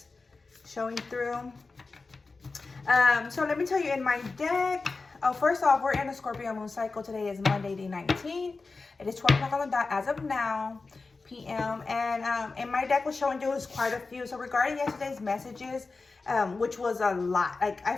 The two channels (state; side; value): quieter; right; 3.9 dB